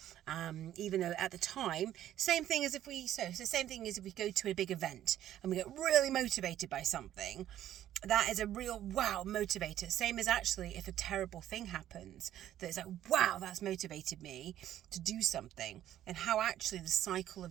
Even though at the time, same thing as if we go to a big event and we get really motivated by something. That is a real wow motivator. Same as actually if a terrible thing happens, that it's like, wow, that's motivated me to do something, and how actually the cycle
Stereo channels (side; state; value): left; quieter; 12.0 dB